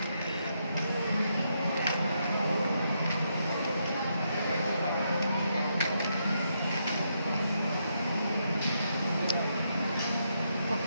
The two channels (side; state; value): both; inverted; correlation -0.79